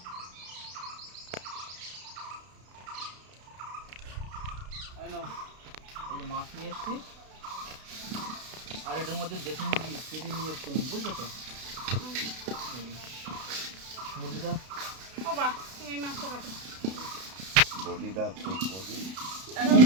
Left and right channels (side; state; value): left; late; 32 ms